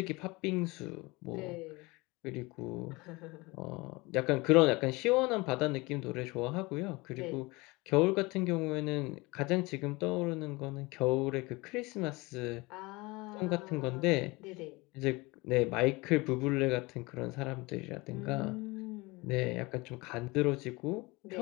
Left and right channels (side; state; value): right; quieter; 23.8 dB